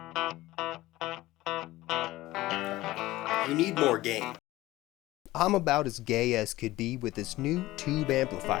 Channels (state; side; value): quieter; right; 17.5 dB